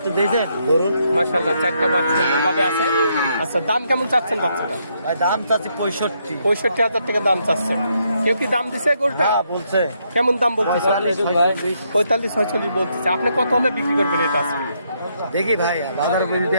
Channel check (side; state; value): both; inverted; correlation -0.76